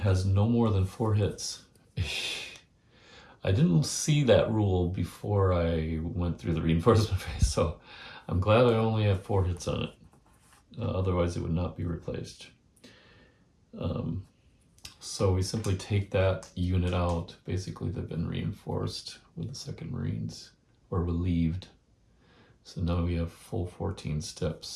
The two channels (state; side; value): identical; both; correlation 1.00